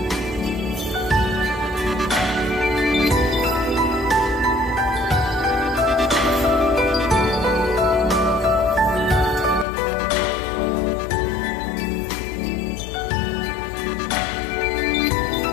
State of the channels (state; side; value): drops out; right; at 9.7 s